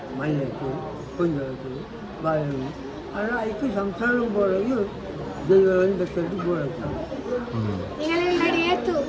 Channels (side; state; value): both; identical; correlation 1.00